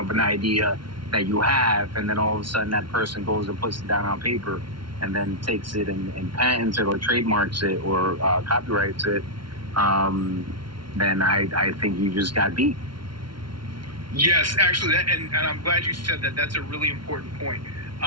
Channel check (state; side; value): late; left; 0.73 ms